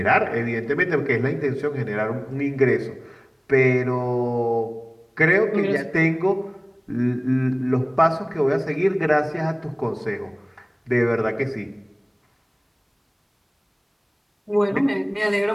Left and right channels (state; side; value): identical; both; correlation 1.00